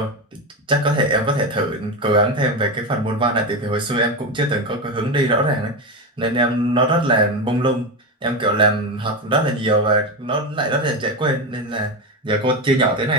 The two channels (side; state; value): both; normal; correlation 0.16